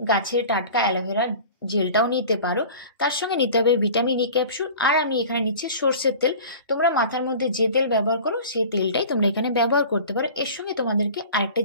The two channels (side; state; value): both; inverted; correlation -0.40